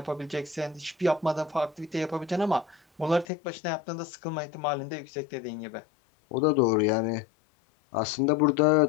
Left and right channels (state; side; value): drops out; right; at 3.2 s